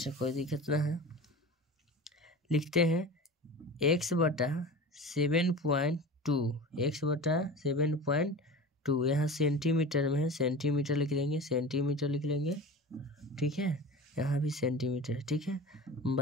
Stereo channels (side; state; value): both; normal; correlation 0.33